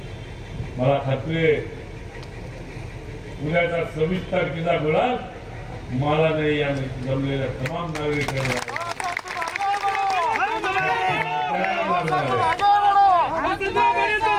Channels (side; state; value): both; identical; correlation 1.00